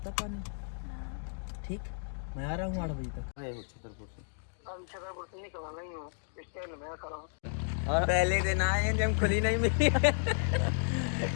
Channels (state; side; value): silent; right; digital silence